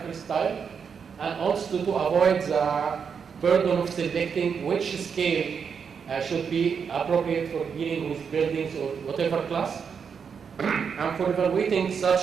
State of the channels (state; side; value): quieter; left; 6.5 dB